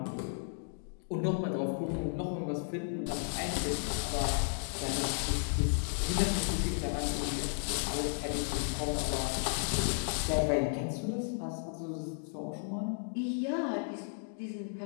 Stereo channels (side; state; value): right; silent; digital silence